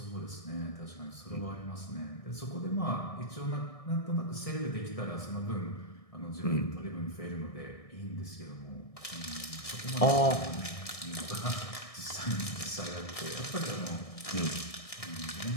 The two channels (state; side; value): late; right; 1.6 ms